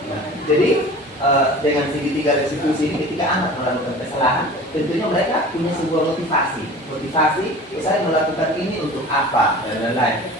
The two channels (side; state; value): both; normal; correlation 0.40